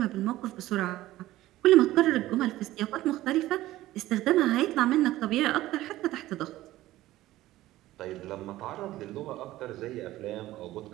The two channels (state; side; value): quieter; left; 15.9 dB